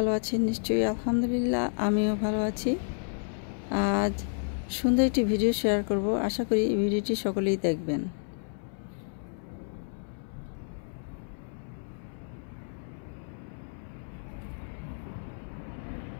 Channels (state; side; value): silent; right; 58 dB below the other